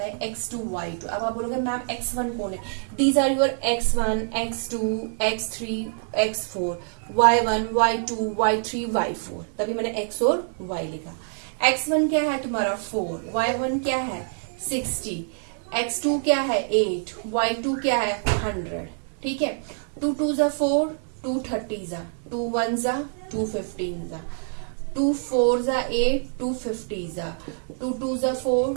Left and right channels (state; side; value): silent; left; 59 dB below the other